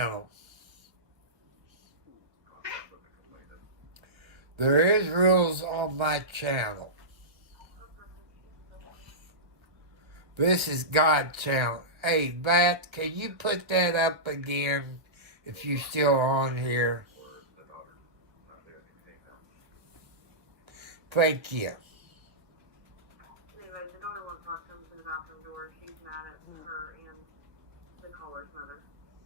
There is rules on my channel. This is God's channel. Hey, Bat, can you put that up again if you're still on here? Thank you. Anyway, the daughter won't talk to him to the bathroom door. She's mad at her and the caller's mother,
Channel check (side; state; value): left; late; 1.4 ms